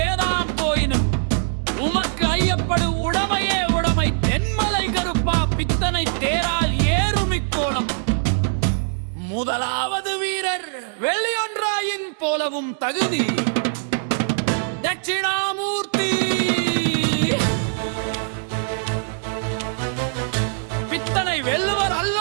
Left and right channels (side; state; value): left; silent; digital silence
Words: போயினும் உமக்கு ஐயப்படு உடமையே உடமை. தென்மலை கருப்பா பித்தனை தேரால் ஏறுமிக்கோணம். முதலாவது வீரர் வெள்ளியொன்றாயின் போலவும் தகுதி தட்சிணாமூர்த்தி. பித்தனை வெல்லுவர்